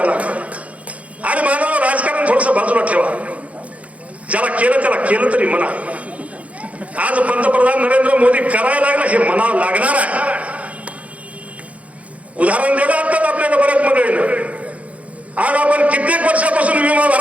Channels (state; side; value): late; left; 0.066 ms